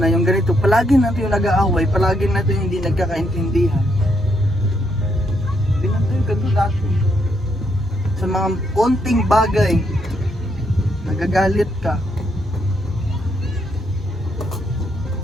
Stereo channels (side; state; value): both; normal; correlation 0.76